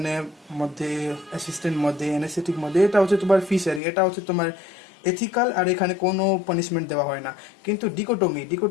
মধ্যে, অ্যাসিস্ট্যান্ট মধ্যে, অ্যানেস্থেটিক মধ্যে। এটা হচ্ছে তোমার ফি শেয়ারিং, এটা হচ্ছে তোমার এথিক্যাল, আর এখানে কোনো পানিশমেন্ট দেওয়া হয় না। কিন্তু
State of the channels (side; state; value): right; drops out; at 3.8 s